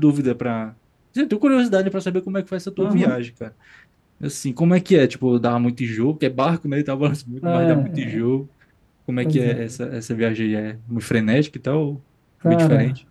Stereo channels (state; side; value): identical; both; correlation 1.00